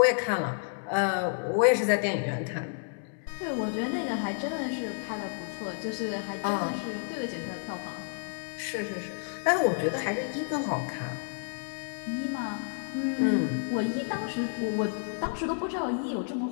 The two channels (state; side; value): silent; right; 58 dB below the other